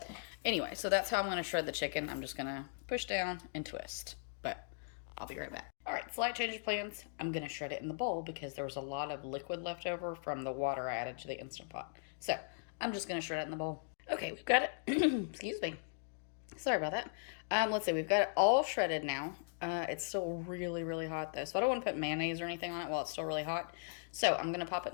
Anyway, so that's how I'm going to shred the chicken. I'm just going to push down and twist, but I'll be right back. All right, slight change of plans. I'm going to shred it in the bowl because there was a lot of liquid left over from the water I added to the Instant Pot. So I'm just going to shred it in the bowl. Okay, we've got it. Excuse me. Sorry about that. Let's see. We've got it all shredded now. It's still really, really hot though, so I don't want to put mayonnaise or anything on it while it's still really hot. So I'm going to pop it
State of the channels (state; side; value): silent; right; digital silence